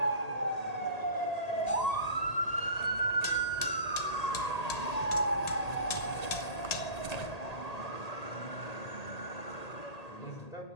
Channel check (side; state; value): right; late; 1.8 ms